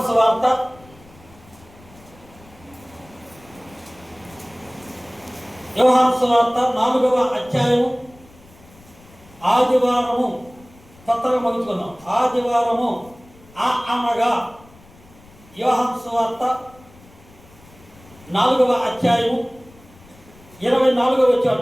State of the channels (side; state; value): left; noise; rumble, 25 dB below the sound